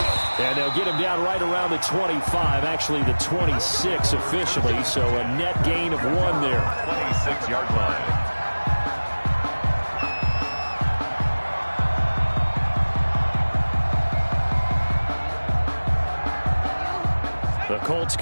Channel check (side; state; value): both; inverted; correlation -1.00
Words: And they'll get him down right around the 25, actually the 26 officially, so a net gain of 1 there. 26-yard line. The Colts